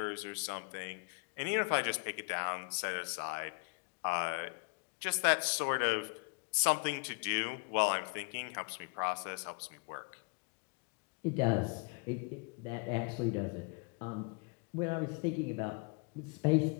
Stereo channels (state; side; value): quieter; right; 34.5 dB